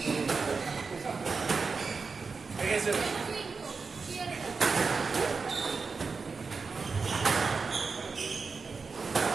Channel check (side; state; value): left; quieter; 4.7 dB